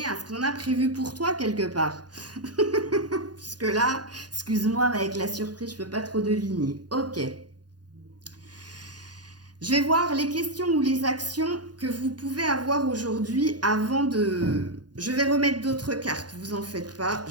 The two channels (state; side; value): late; left; 0.69 ms